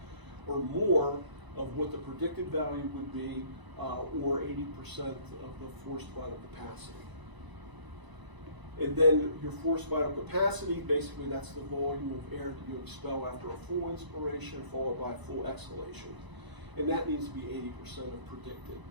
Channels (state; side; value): late; left; 1.0 ms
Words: or more of what the predicted value would be, or 80% of the forced vital capacity. And then your forced vital capacity, basically that's the volume of air that you expel after a full inspiration followed by a full exhalation. And that needs to be 80% of predicted.